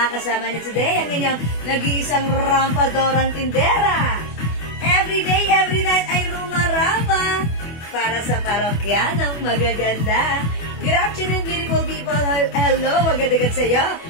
niyo today, ang inyong nag-iisang rampadorang tindera. Every day, every night ay rumarapa para sa parokyanong magaganda. Good afternoon, beautiful people. Hello, magandang sa iyo.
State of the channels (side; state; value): right; late; 24 ms